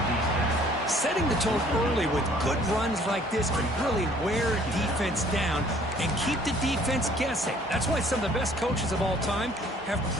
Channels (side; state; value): both; normal; correlation 0.57